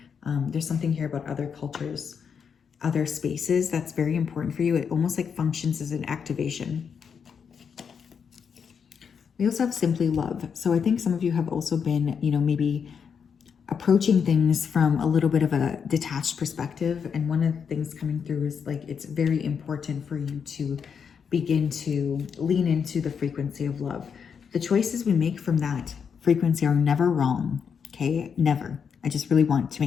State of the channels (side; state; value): right; quieter; 6.7 dB